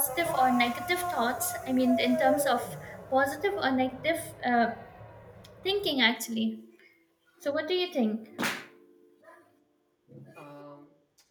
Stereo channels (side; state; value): both; identical; correlation 1.00